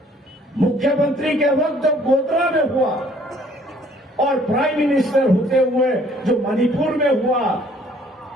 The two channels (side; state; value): both; normal; correlation 0.59